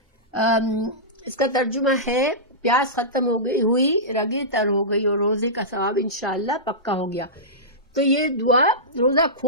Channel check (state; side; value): normal; both; correlation -0.16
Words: اس کا ترجمہ ہے پیاس ختم ہو گئی ہوئی، رگیں تر ہو گئی اور روزے کا ثواب انشاءاللہ پکا ہو گیا۔ تو یہ دعا روزہ